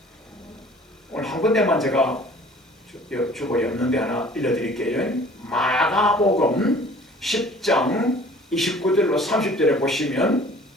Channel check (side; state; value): both; normal; correlation 0.50